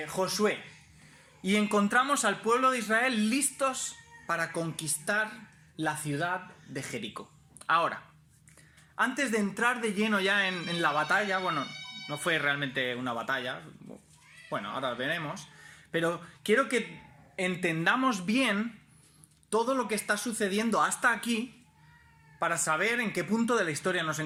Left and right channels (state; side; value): identical; both; correlation 1.00